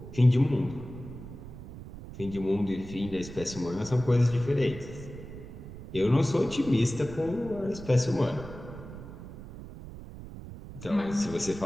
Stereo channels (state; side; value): noise; right; rumble, 13 dB below the sound